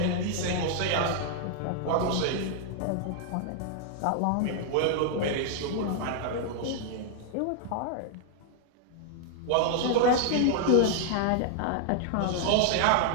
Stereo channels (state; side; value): different; both; correlation 0.00